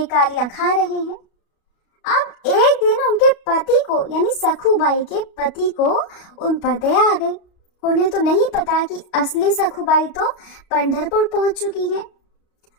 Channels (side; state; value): right; late; 33 ms